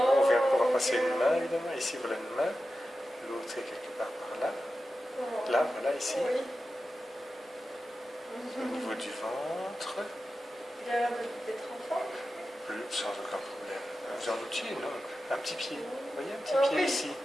vient pouvoir passer une main, évidemment. Ici, voilà une main. L'autre est quelque part par là. Là, voilà, ici. Oui. Au niveau du ventre. Il a l'air d'être enfant. Sans aucun problème. Vous en doutiez, non? Un petit pied. Vous voyez, un petit Ah pied oui. ici.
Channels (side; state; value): both; normal; correlation 0.92